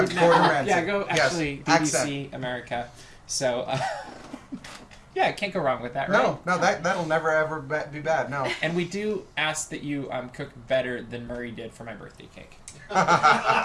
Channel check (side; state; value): both; identical; correlation 1.00